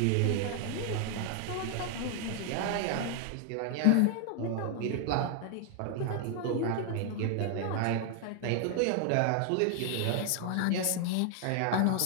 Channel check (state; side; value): different; both; correlation 0.00